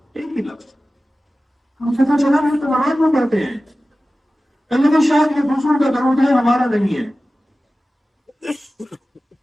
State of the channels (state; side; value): normal; both; correlation 0.96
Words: ایک ہی لفظ. ہم پتہ چلا ہم تو نماز میں پڑھتے ہیں، کہ شاید یہ دوسروں کا درود ہے، ہمارا نہیں ہے.